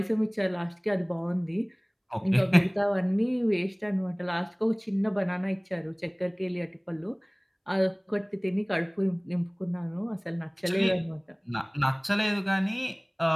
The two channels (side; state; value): both; identical; correlation 1.00